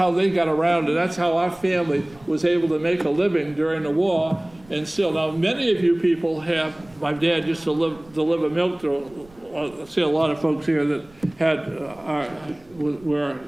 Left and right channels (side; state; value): right; noise; rumble, 26 dB below the sound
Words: they got around, and that's how our family was able to make a living during the war. And still, now many of you people have. My dad used to deliver milk to. I see a lot of folks here that were